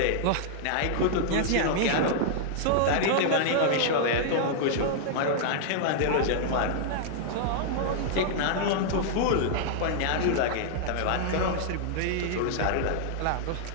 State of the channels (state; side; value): different; both; correlation -0.01